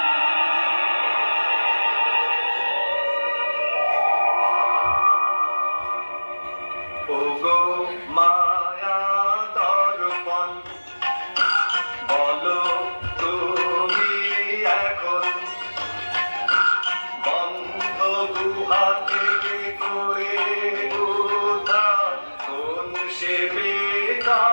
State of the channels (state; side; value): inverted; both; correlation -1.00